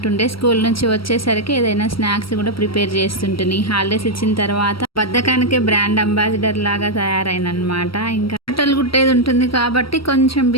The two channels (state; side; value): late; right; 0.75 ms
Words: స్కూల్ నుంచి వచ్చేసరికి ఏదైనా స్నాక్స్ కూడా ప్రిపేర్ చేస్తుంటుంది. హాలిడేస్ ఇచ్చిన తర్వాత బద్ధకానికే బ్రాండ్ అంబాసిడర్ లాగా తయారైనమాట. ఇంకా బట్టలు కుట్టేది ఉంటుంది కాబట్టి కొంచెం